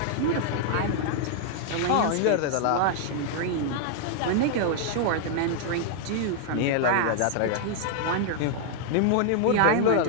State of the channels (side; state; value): both; different; correlation 0.00